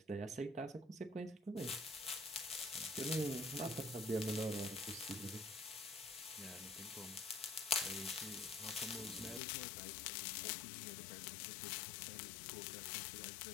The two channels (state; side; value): drops out; right; at 9.4 s